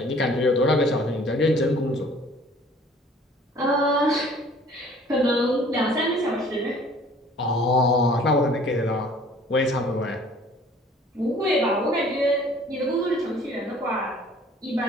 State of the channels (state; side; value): normal; both; correlation 0.53